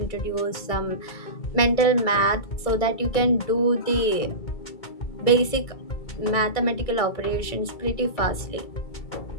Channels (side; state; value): right; late; 2.3 ms